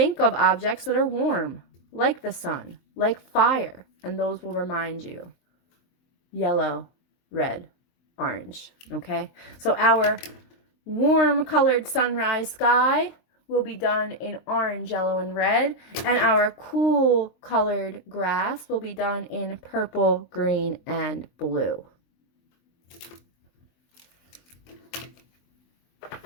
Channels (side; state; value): right; late; 23 ms